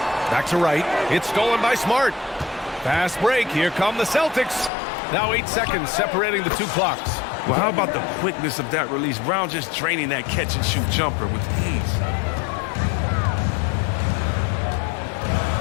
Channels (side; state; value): right; drops out; at 4.7 s